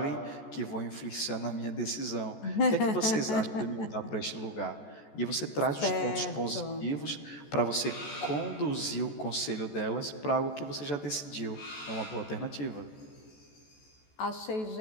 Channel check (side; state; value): right; late; 14 ms